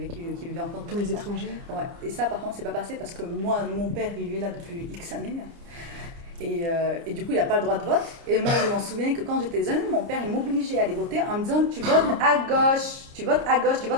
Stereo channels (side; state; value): left; late; 29 ms